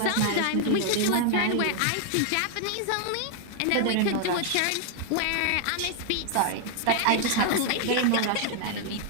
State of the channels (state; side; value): different; both; correlation 0.00